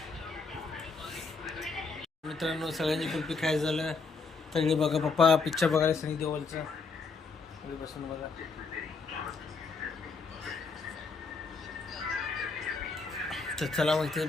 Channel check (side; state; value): right; quieter; 4.4 dB